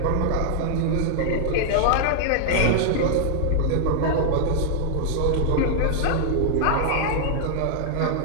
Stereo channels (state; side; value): different; both; correlation -0.01